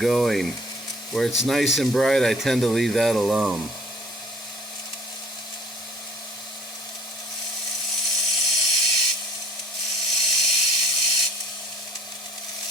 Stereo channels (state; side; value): normal; both; correlation 0.53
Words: Where it's nice and bright, I tend to leave that alone.